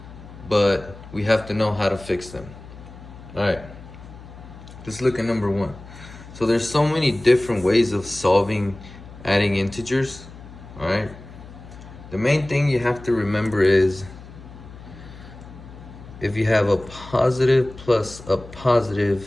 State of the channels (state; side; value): noise; left; hum, 17 dB below the sound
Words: but we have to know how to fix them. All right, let's look at number one. So there's so many different ways of solving adding integers, all right? The main thing you have to remember is if you have a positive plus a